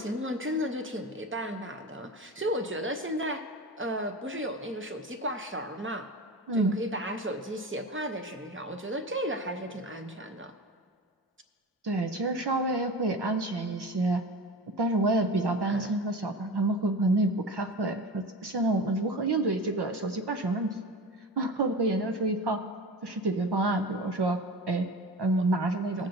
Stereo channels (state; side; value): normal; both; correlation 0.31